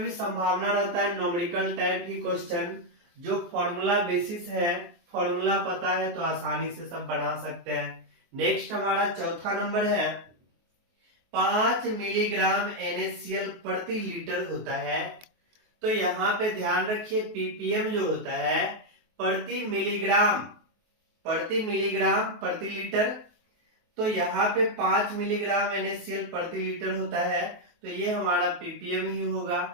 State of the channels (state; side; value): late; left; 23 ms